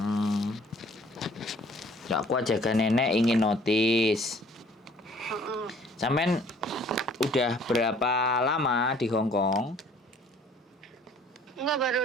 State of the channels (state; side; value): normal; both; correlation 0.56